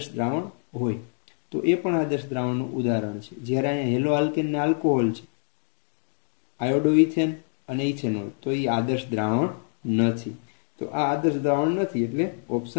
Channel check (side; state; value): right; silent; digital silence